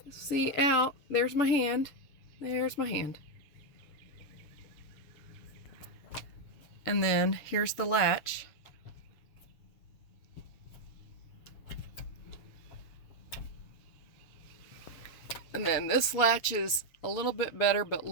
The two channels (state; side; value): late; right; 7.1 ms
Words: out. There's my hand. There's my hand. And then here's the latch. And then this latch is a little bit better, but